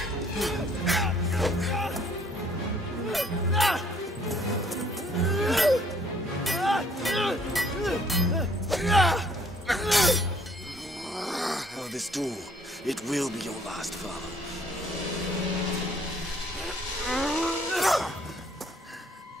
Oh, this duel, it will be your last, follow.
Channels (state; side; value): normal; both; correlation 0.62